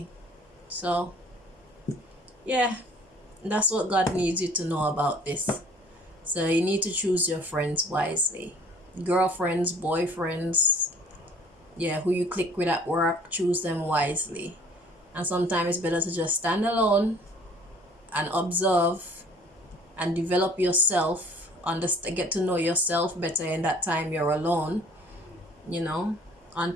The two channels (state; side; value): normal; both; correlation 0.52